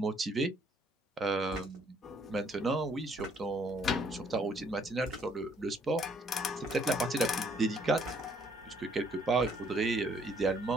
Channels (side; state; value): both; normal; correlation 0.65